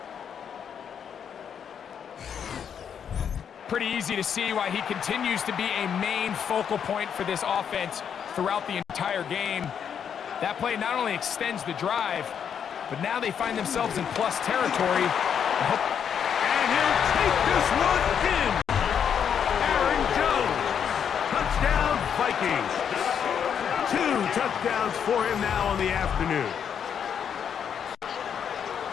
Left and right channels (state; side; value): quieter; right; 7.9 dB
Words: Pretty easy to see why he continues to be a main focal point for this offense throughout the entire game. That play not only extends the drive, but now they find themselves in plus territory. And he'll take this one in. Aaron Jones. Touchdown, Vikings. 2 touchdowns for him now on the afternoon.